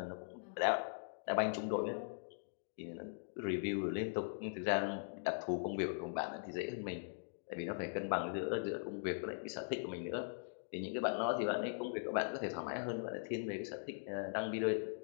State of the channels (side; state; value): right; silent; digital silence